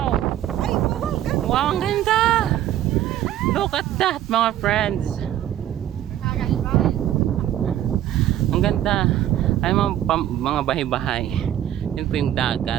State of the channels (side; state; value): left; quieter; 12.1 dB